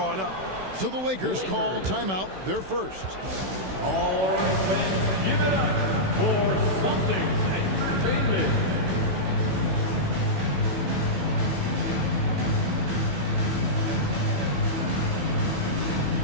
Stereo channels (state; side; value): late; left; 16 ms